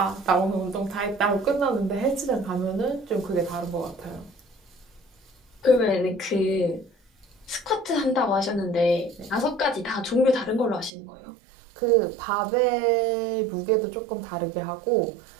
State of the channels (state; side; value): drops out; left; at 10.9 s